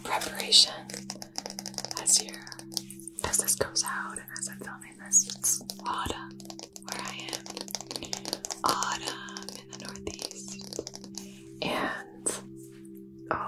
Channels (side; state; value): both; identical; correlation 1.00